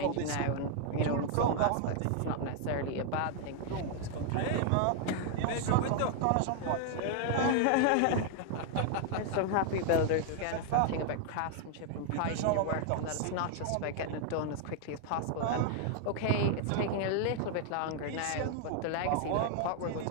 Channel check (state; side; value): different; both; correlation 0.00